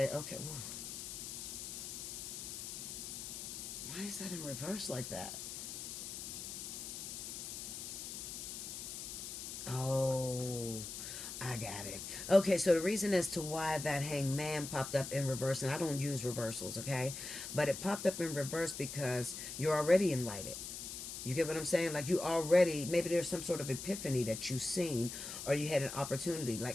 Woo. Why is that in reverse like that? Oh, I got it. Okay, so the reason as to why that Hangman popped up in reverse, and I don't use reversals, okay? But it popped up in reverse because you're already enlightened. You get what I'm saying? Like, you already, maybe there's some sort of epiphany that you've seen, or you had an opportunity.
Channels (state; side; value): noise; left; hiss, 7 dB below the sound